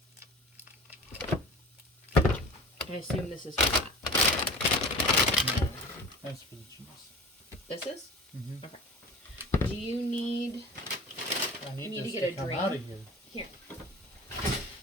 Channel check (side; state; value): both; normal; correlation 0.38